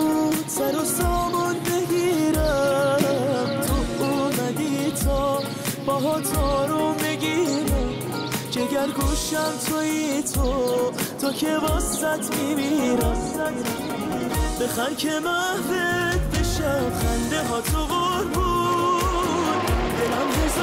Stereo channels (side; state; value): both; identical; correlation 1.00